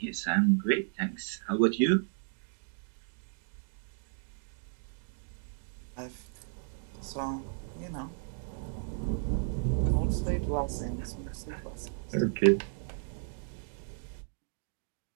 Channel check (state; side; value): silent; left; digital silence